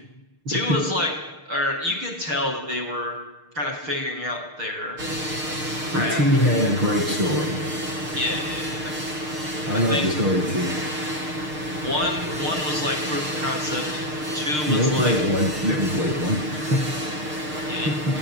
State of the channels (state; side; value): late; left; 6.6 ms